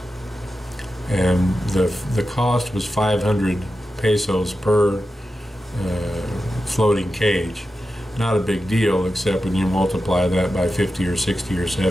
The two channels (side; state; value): both; normal; correlation 0.91